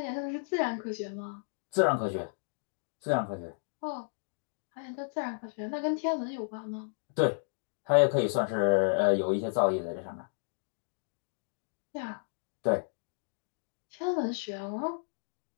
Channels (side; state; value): right; silent; digital silence